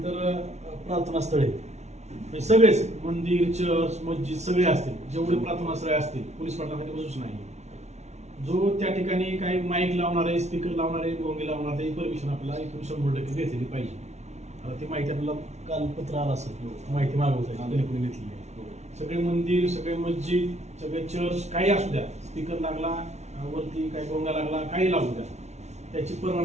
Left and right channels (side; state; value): left; late; 0.32 ms